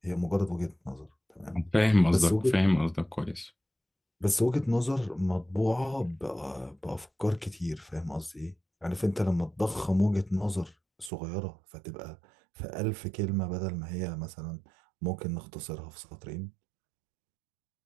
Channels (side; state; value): left; drops out; at 11.1 s